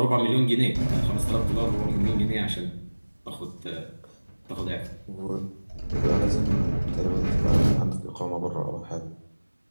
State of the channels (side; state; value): both; inverted; correlation -1.00